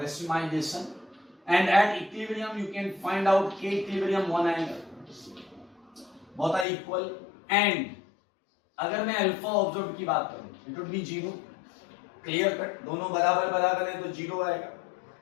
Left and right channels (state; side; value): drops out; right; at 6.7 s